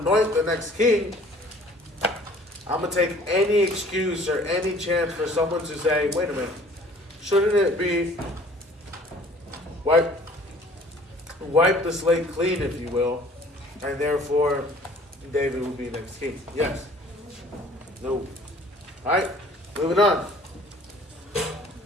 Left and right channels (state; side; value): normal; both; correlation 0.53